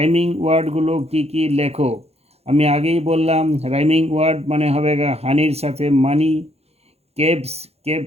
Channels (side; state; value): left; late; 0.30 ms